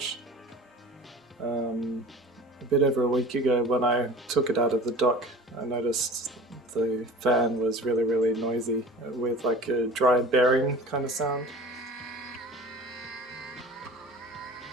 A bit over a week ago when I took it out of the dock, I noticed the fan was really noisy with like a dry bearing kind of sound.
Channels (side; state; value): both; normal; correlation 0.39